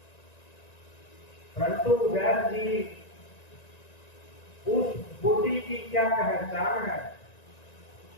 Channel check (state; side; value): late; right; 1.9 ms